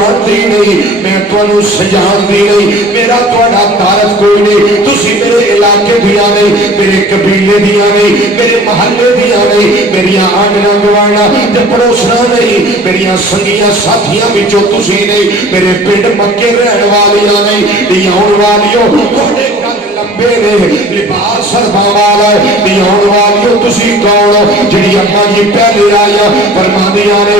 نہیں میں تانوں سجانتی نہیں میرا تہاڈا تعارف کوئی نہیں تسی میرے علاقے دیا نہیں میرے قبیلے دیا نہیں میرے محلے دیا نہیں میریاں آنگنا گوانا تے پڑوسنا نہیں میریاں سنگیاں ساتھیاں وچوں تسی نہیں میرے پنڈ مکے رہن والیاں نہیں آن والیوں تہاڈے لمبے نے لباس سربا والا ہے آن والیوں تسی کون جڑی اماں جی پہلے آیا فرما دیا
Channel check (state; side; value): normal; both; correlation 0.46